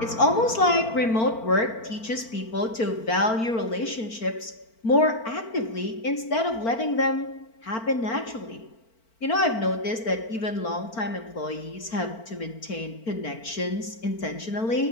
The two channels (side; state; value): right; late; 4.4 ms